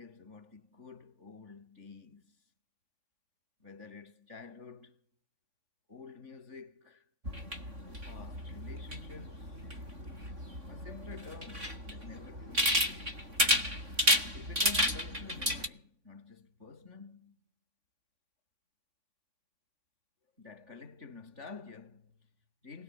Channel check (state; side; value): late; left; 3.6 ms